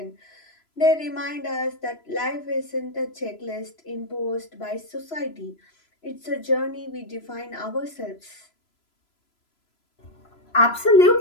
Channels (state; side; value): late; right; 3.0 ms